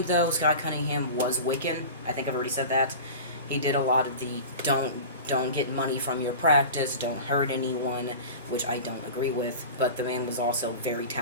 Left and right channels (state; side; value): inverted; both; correlation -0.33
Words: though, Scott Cunningham was Wiccan. I think I've already said that. He did a lot of the don't get money from your practice, don't hurt anyone, which I don't agree with. But the man was also very